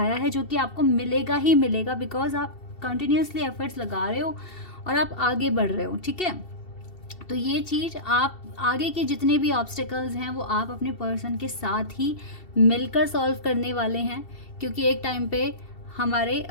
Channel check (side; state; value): right; late; 2.7 ms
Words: है, जो कि आपको मिलेगा ही मिलेगा, बिकॉज आप कंटिन्यूसली एफर्ट्स लगा रहे हो और आप आगे बढ़ रहे हो, ठीक है। तो ये चीज़ आप आगे के जितने भी ऑब्स्टिकल्स हैं वो आप अपने पर्सन के साथ ही मिलकर सॉल्व करने वाले हैं, क्योंकि एक टाइम पे हमारे